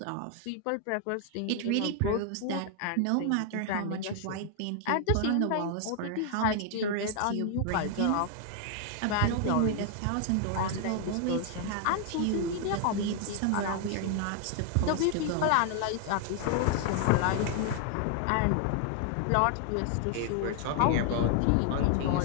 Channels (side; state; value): both; different; correlation 0.00